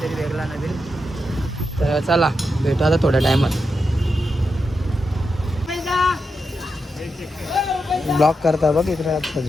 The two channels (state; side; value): normal; both; correlation 0.87